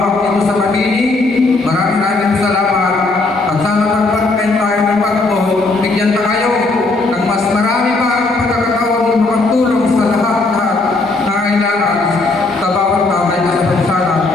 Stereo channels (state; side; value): quieter; right; 3.3 dB